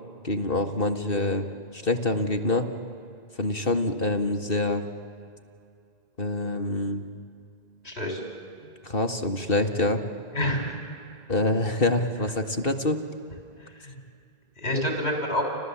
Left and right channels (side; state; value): right; late; 2.7 ms